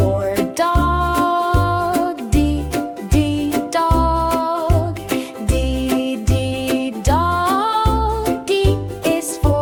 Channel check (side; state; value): both; identical; correlation 1.00